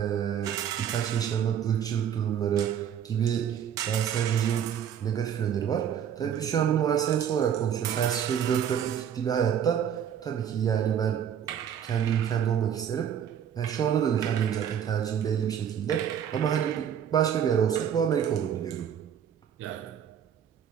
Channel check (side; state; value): left; quieter; 8.9 dB